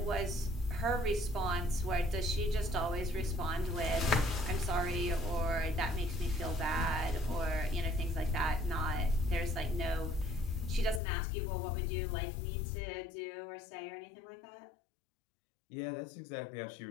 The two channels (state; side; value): drops out; right; at 11.0 s